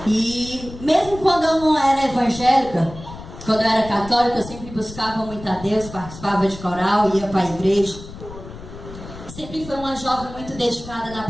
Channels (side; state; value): left; noise; rumble, 14 dB below the sound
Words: E mesmo quando eu não era evangélica, quando eu era católica, eu sempre buscava muito a Deus, participava de coral, ia para a igreja. Sempre fui uma jovem muito dedicada na